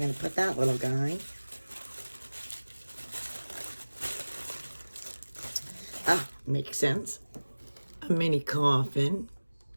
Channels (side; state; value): both; inverted; correlation -1.00